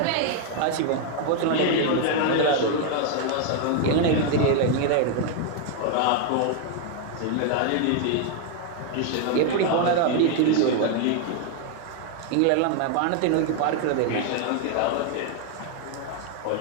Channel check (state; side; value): different; both; correlation 0.00